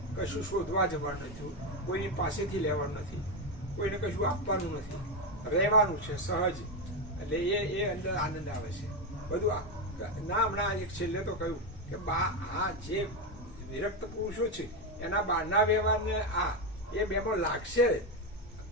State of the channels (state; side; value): normal; both; correlation 0.10